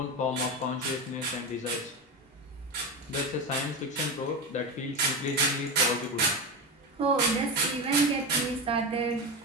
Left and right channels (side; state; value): both; normal; correlation 0.19